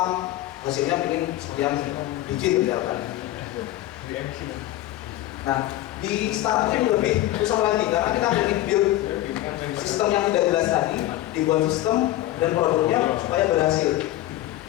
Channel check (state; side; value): quieter; right; 15.2 dB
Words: hasilnya pengen sekian digit misalkan. Nah, di startup ini lebih susah lagi karena kita ingin build sistem yang tidak jelas tadi, dibuat sistem dan produknya supaya berhasil.